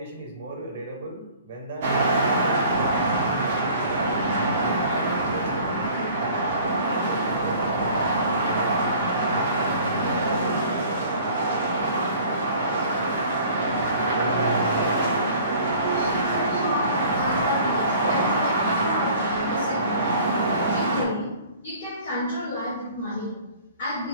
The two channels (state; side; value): inverted; both; correlation -0.49